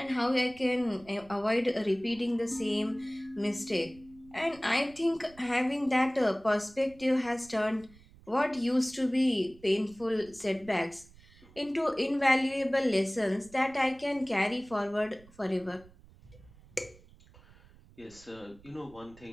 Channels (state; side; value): noise; right; rumble, 24 dB below the sound